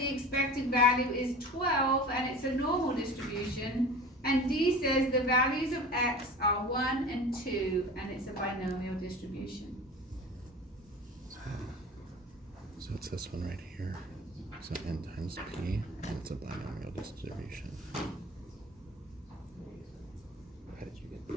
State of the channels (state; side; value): normal; both; correlation 0.37